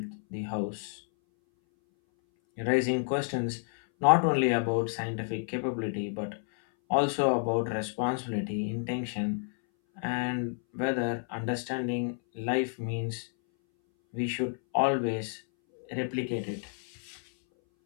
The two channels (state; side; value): silent; right; 58 dB below the other